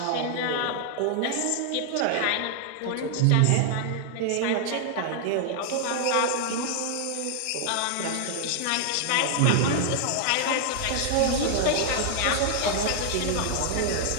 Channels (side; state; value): both; different; correlation 0.00